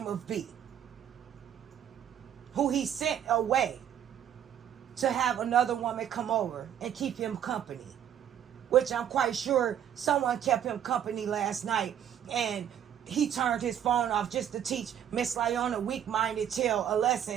of B, who he sent away to have another woman come over and keep him company, which I'm quite sure someone kept him company last night, and he turned his phone off just to teach Miss Lieonya, weak-minded tail, a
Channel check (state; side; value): quieter; left; 9.8 dB